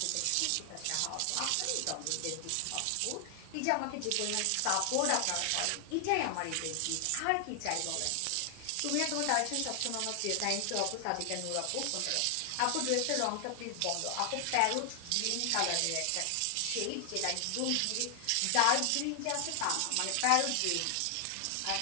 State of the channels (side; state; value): both; different; correlation 0.00